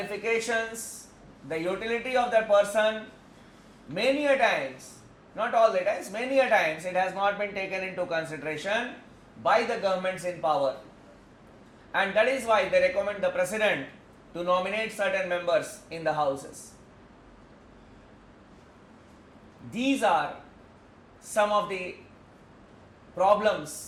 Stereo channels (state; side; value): identical; both; correlation 1.00